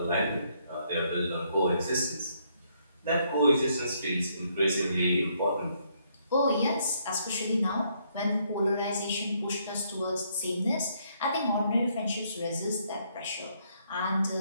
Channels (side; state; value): both; inverted; correlation -0.71